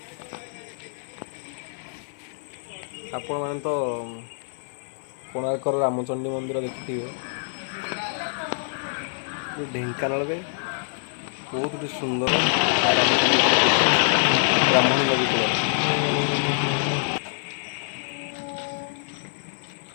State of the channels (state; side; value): silent; right; 55 dB below the other